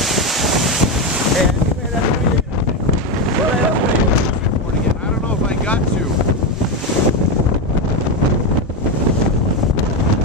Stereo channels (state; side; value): normal; both; correlation 0.11